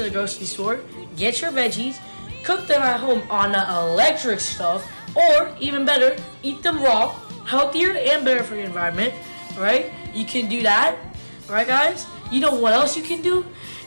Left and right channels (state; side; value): inverted; both; correlation -1.00